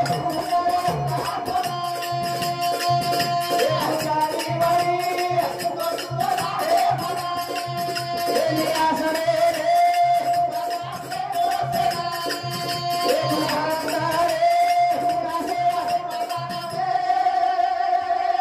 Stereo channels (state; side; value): identical; both; correlation 1.00